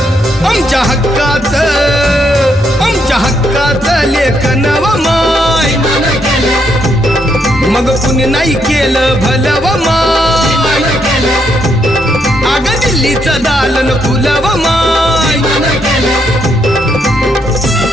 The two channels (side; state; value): both; normal; correlation 0.76